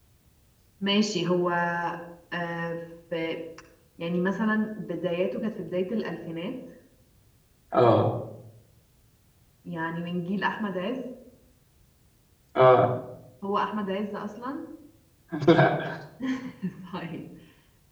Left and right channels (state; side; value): identical; both; correlation 1.00